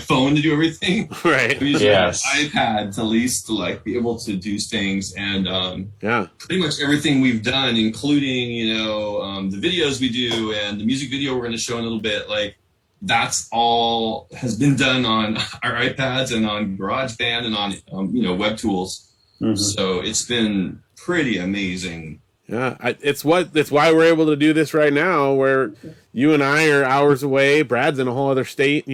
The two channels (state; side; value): identical; both; correlation 1.00